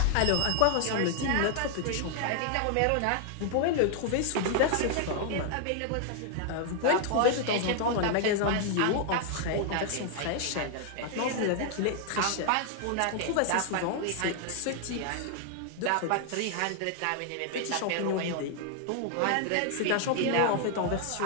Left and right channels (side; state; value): both; different; correlation 0.00